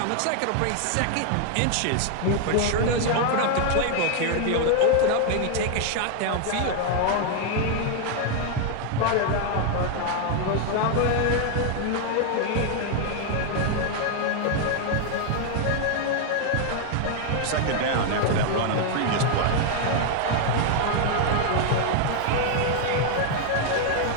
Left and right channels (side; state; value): both; different; correlation 0.00